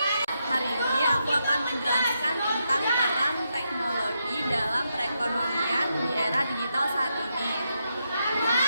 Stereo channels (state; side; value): inverted; both; correlation -0.83